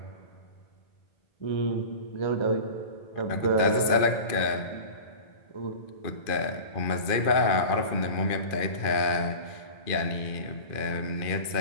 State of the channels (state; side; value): late; right; 2.4 ms